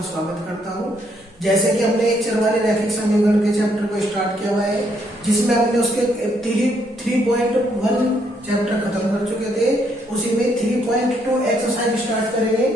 स्वागत करता हूं। जैसे कि हमने एक चरवाले रैखिक समीकरण के चैप्टर को स्टार्ट किया हुआ है, जिसमें हमने उसके 3.1 चैप्टर खत्म कर चुके थे। उसी में 3.2 एक्सरसाइज स्टार्ट करेंगे।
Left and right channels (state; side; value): normal; both; correlation 0.72